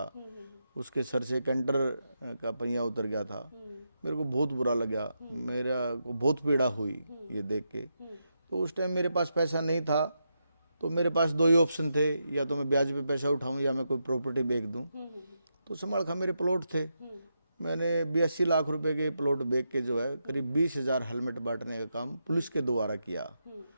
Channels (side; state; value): both; inverted; correlation -0.84